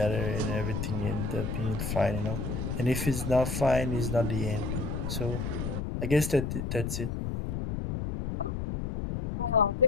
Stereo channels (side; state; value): left; noise; rumble, 3 dB below the sound